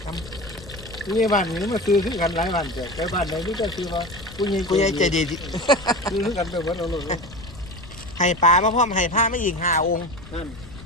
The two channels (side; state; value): left; noise; rumble, 17 dB below the sound